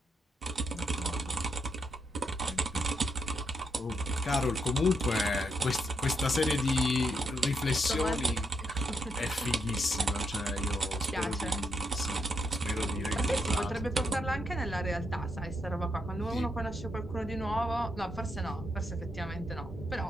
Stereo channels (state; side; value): normal; both; correlation 0.78